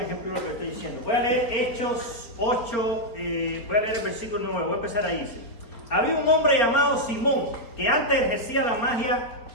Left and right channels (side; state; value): right; late; 4.5 ms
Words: ejemplo de lo que estoy diciendo. Voy a leer Hechos 8, voy a leer el versículo 9, voy a empezar ahí. Dice: había un hombre llamado Simón, que antes ejercía la magia